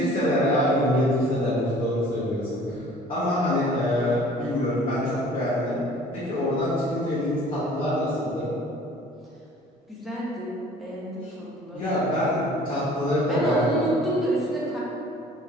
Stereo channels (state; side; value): normal; both; correlation 0.50